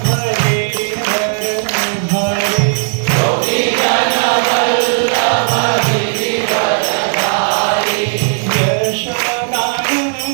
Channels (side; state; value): left; silent; digital silence